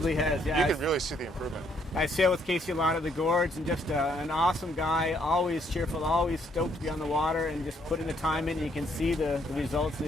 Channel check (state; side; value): normal; both; correlation 0.70